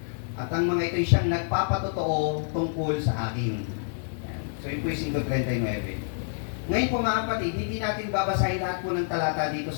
at ang mga ito'y siyang nagpapatotoo tungkol sa akin. So yun po yung 5:39. Ngayon po mga kapatid, hindi natin babasahin lahat po ng talata dito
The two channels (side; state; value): right; silent; 58 dB below the other